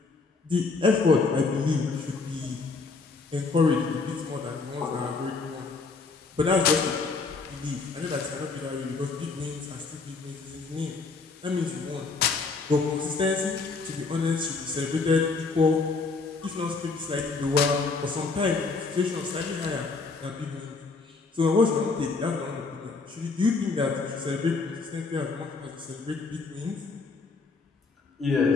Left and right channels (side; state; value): right; quieter; 4.2 dB